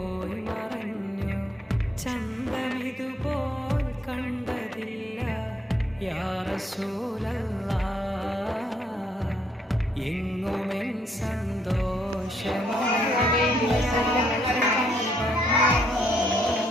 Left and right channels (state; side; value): normal; both; correlation 0.71